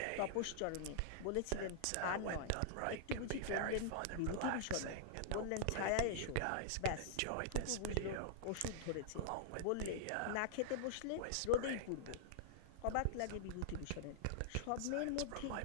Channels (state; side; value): different; both; correlation -0.01